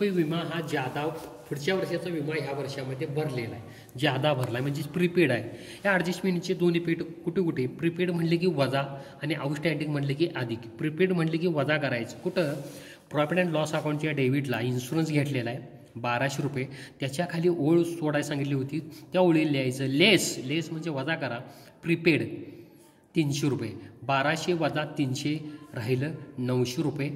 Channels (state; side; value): identical; both; correlation 1.00